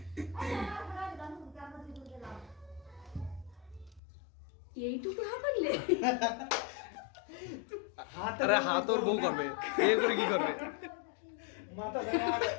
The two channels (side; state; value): right; drops out; at 4.0 s